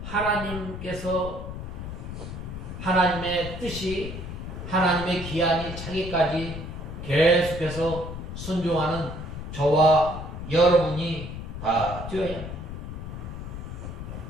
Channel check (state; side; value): noise; left; rumble, 8 dB below the sound